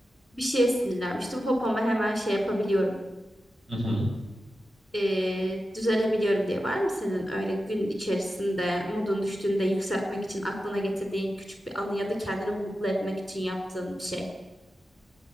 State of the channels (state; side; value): normal; both; correlation 0.92